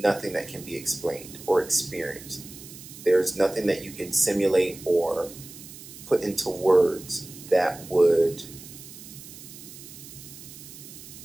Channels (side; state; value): right; noise; hiss, 16 dB below the sound